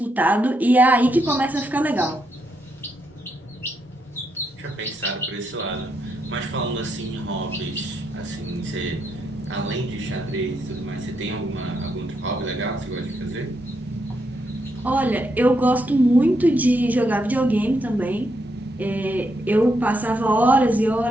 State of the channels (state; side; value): normal; both; correlation 0.79